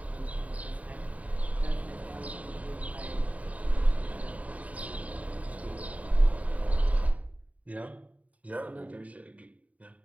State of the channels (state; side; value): late; left; 0.069 ms